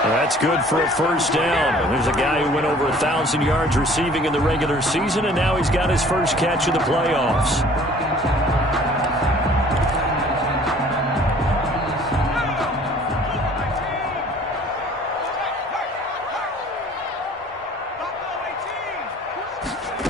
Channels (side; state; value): both; normal; correlation 0.52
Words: That's good for a first down. There's a guy who went over 1,000 yards receiving in the regular season, and now he's got his first catch in the playoffs.